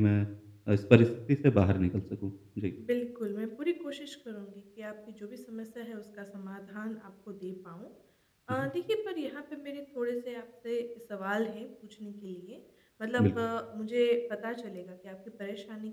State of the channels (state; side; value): identical; both; correlation 1.00